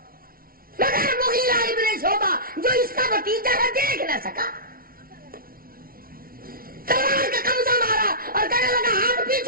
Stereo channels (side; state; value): left; late; 0.43 ms